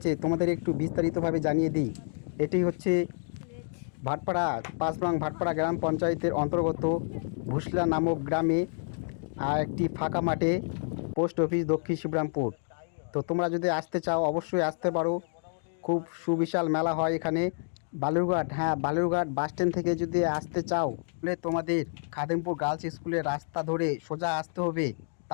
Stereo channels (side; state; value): right; silent; digital silence